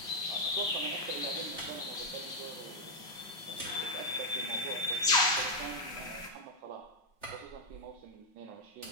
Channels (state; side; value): late; left; 5.4 ms